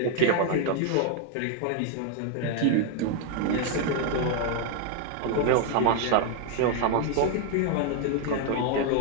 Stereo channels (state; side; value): different; both; correlation 0.00